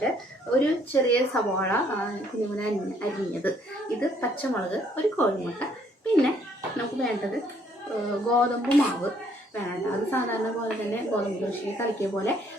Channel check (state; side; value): normal; both; correlation 0.65